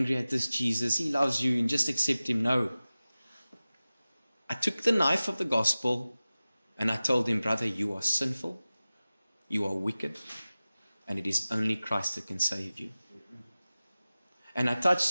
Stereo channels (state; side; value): inverted; both; correlation -0.97